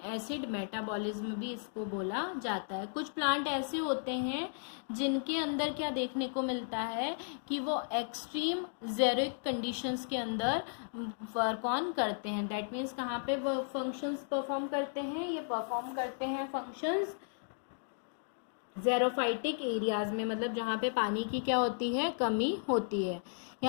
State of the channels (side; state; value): right; silent; digital silence